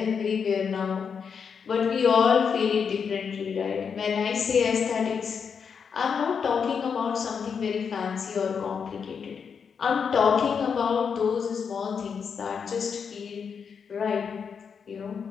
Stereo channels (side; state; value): right; quieter; 6.4 dB